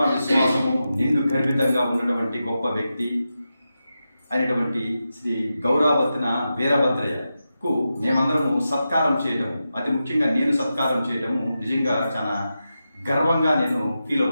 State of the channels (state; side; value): inverted; both; correlation -0.90